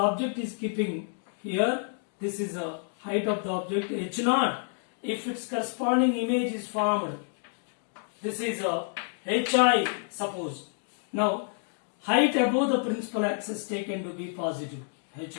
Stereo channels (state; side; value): silent; right; 59 dB below the other